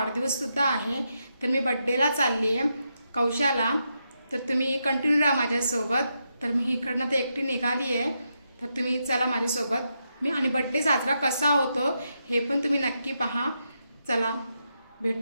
आहे। तर मी बड्डेला चालली आहे कौशाला, तर तुम्ही कंटिन्यू राहा माझ्यासोबत। तर मी इकडनं तर एकटी निघाली आहे, तर तुम्ही चला माझ्यासोबत। मी आणि बड्डे साजरा कसा होतो हे पण तुम्ही नक्की पहा। चला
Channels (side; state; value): both; inverted; correlation -0.83